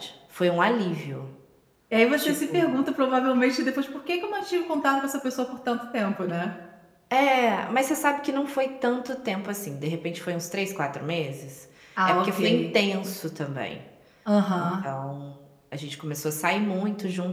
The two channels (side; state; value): both; identical; correlation 1.00